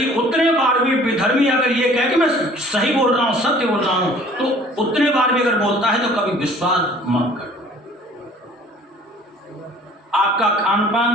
उतने बार भी विधर्मी अगर ये कहे कि मैं सही बोल रहा हूं, सत्य बोल रहा हूं, तो उतने बार भी अगर बोलता है तो कभी विश्वास मत करो। आपका खान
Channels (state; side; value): normal; both; correlation 0.52